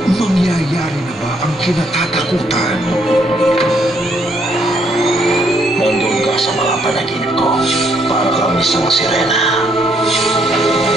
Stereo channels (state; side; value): normal; both; correlation 0.71